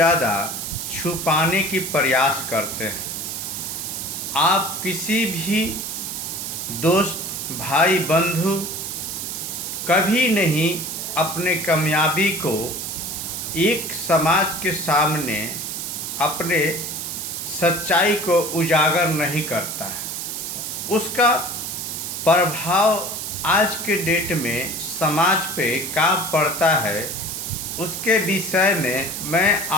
छुपाने की प्रयास करते हैं। आप किसी भी दोस्त, भाई, बंधु कभी नहीं अपने कामयाबी को एक समाज के सामने अपने सच्चाई को उजागर नहीं करता है। उसका प्रभाव आज के डेट में समाज पे क्या पड़ता है, उसके विषय में मैं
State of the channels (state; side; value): noise; right; hiss, 5 dB below the sound